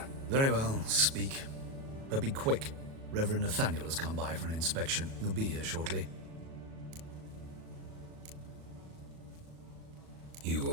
Very well, speak. But be quick. Reverend Nathaniel has come by for an inspection. He'll be here shortly. You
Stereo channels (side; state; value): left; late; 37 ms